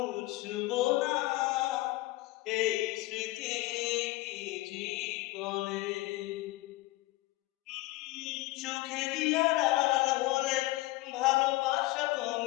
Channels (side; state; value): right; quieter; 19.1 dB